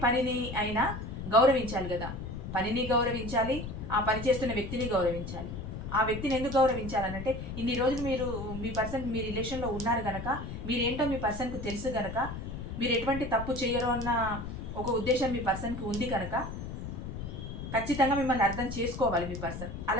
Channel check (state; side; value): noise; left; rumble, 7 dB below the sound